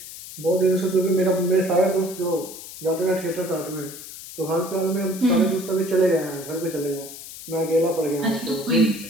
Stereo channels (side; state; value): left; noise; hiss, 13 dB below the sound